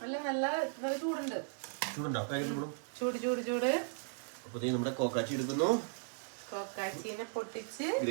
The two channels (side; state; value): left; silent; digital silence